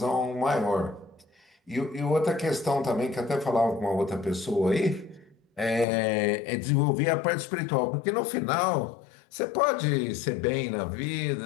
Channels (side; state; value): right; drops out; at 5.9 s